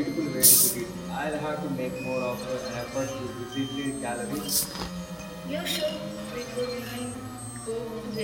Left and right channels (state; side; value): identical; both; correlation 1.00